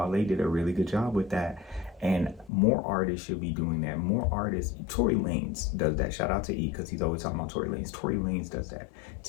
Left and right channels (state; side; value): drops out; right; at 2.5 s